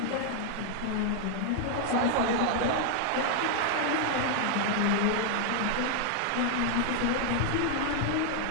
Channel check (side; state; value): both; different; correlation 0.00